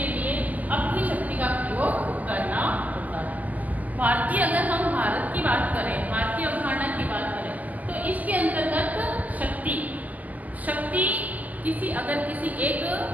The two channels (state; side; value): late; left; 0.079 ms